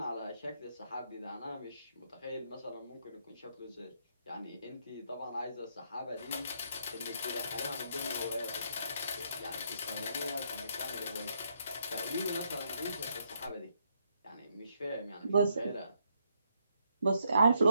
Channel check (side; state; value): both; inverted; correlation -0.75